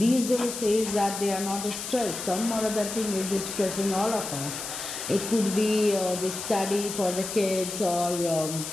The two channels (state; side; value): noise; left; hiss, 7 dB below the sound